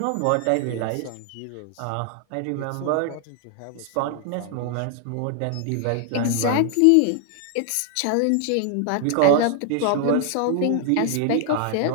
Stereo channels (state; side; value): different; both; correlation 0.00